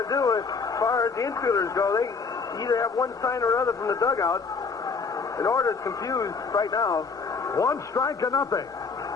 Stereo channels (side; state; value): right; quieter; 4.9 dB